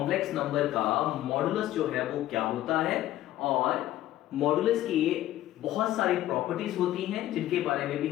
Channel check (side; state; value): right; quieter; 14.2 dB